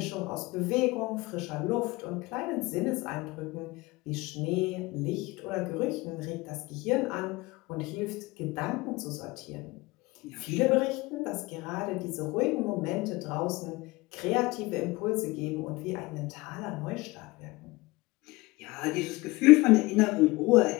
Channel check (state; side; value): quieter; right; 21.7 dB